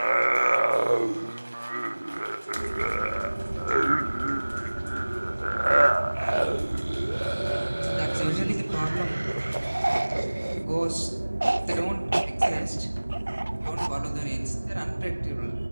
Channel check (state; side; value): inverted; both; correlation -1.00